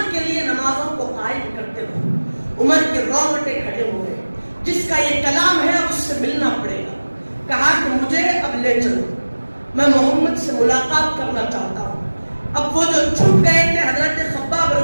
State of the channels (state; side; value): inverted; both; correlation -1.00